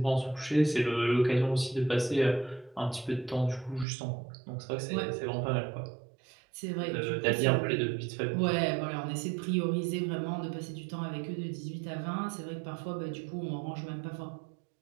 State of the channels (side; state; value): left; drops out; at 3.9 s